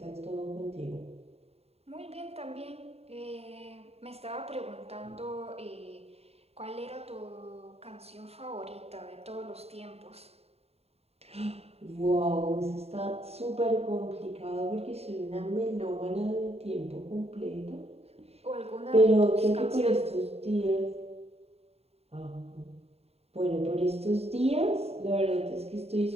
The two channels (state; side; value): late; left; 0.30 ms